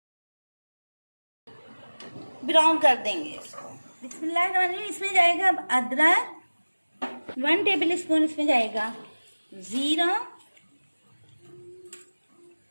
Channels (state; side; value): inverted; both; correlation -1.00